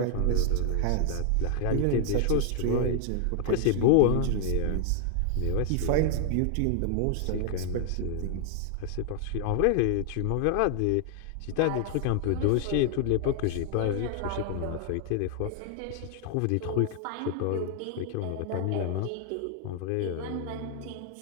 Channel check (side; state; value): both; different; correlation 0.00